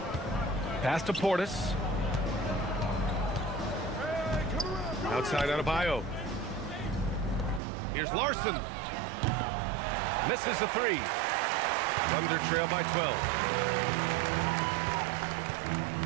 Pass to Portis. Outside Adebayo. Here's Larson. Misses the 3. Thunder trail by 12.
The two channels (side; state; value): left; drops out; at 7.6 s